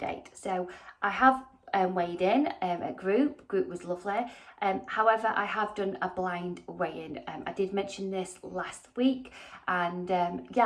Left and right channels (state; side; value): identical; both; correlation 1.00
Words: So I have weighed in at group was lovely. However, I have done a blind weigh-in. I did mention this last week and